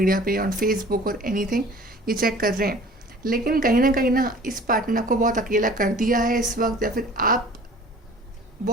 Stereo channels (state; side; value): normal; both; correlation 0.47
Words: पे, ऑन फेसबुक और एनीथिंग, ये चेक कर रहे हैं. लेकिन कहीं ना इस पार्टनर ने आपको बहुत अकेला कर दिया है इस वक्त, या फिर आप